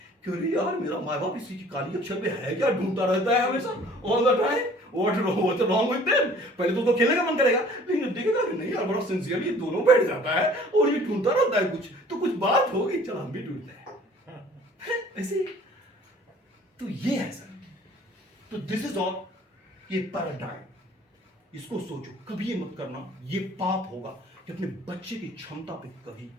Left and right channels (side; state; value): both; normal; correlation 0.52